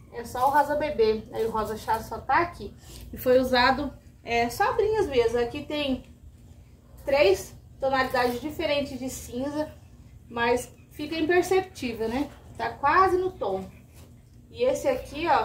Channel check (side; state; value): both; identical; correlation 1.00